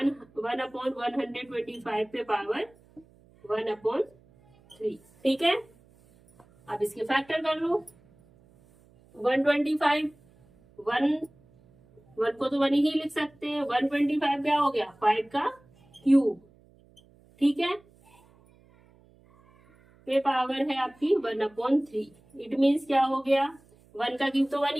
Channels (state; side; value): noise; right; hum, 29 dB below the sound